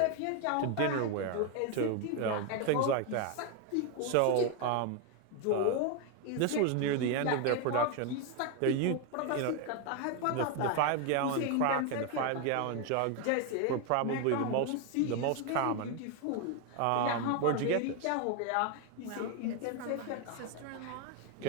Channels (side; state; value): both; different; correlation 0.01